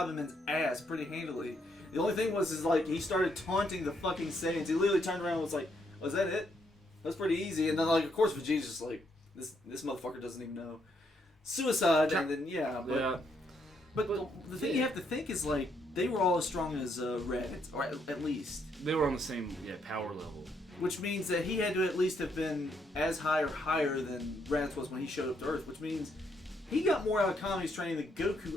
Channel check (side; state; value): both; normal; correlation 0.74